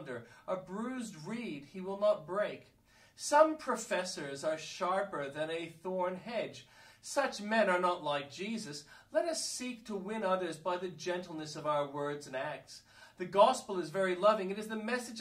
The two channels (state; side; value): identical; both; correlation 1.00